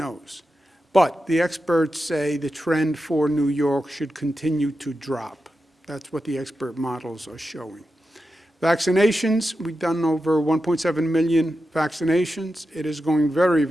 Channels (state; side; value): normal; both; correlation 0.90